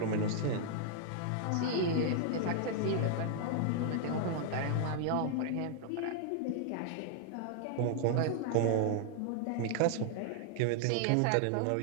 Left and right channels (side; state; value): both; different; correlation 0.00